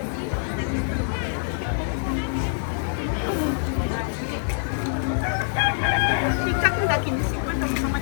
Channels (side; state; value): right; silent; digital silence